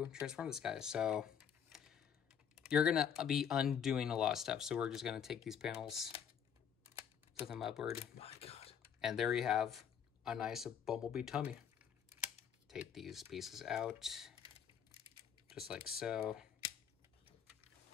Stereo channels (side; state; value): right; quieter; 8.0 dB